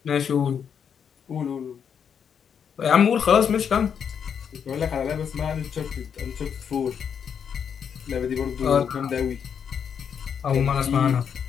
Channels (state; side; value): quieter; right; 7.5 dB